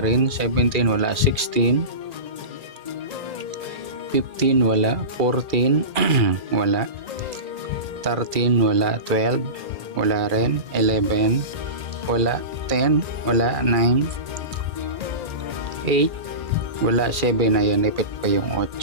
17, wala. 16, 15, wala. 14, wala. 13, wala. 12, wala rin. 11, wala. 10, wala. 9, 8, wala. 7, ayan, ipit pa yung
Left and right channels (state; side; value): late; left; 2.4 ms